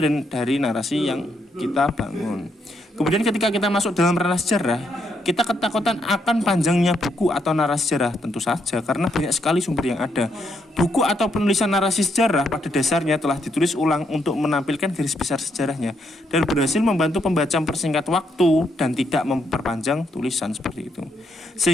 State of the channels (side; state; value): both; normal; correlation 0.76